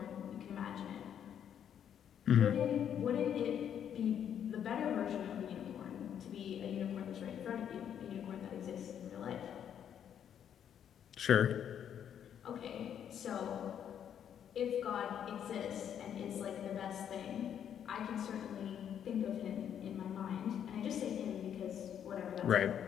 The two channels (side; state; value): right; quieter; 9.1 dB